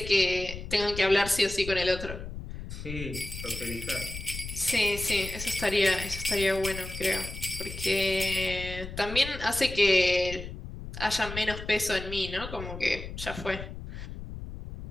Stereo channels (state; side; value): noise; left; rumble, 9 dB below the sound